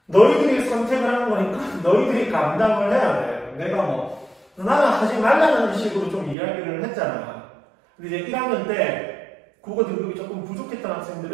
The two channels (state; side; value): drops out; left; at 6.4 s